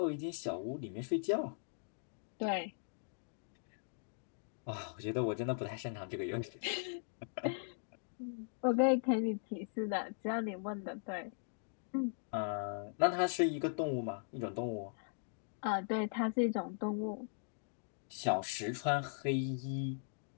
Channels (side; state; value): right; silent; digital silence